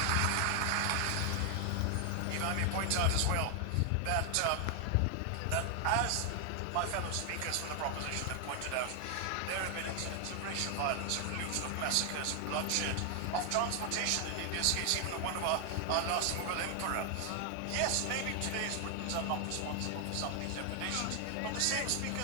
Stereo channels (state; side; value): different; both; correlation 0.00